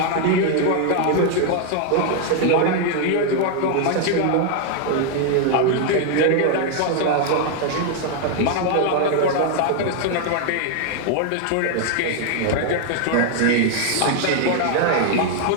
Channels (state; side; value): different; both; correlation 0.00